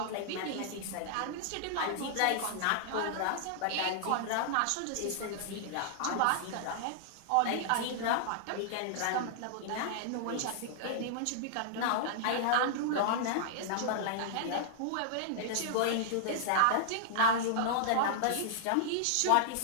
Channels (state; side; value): different; both; correlation -0.01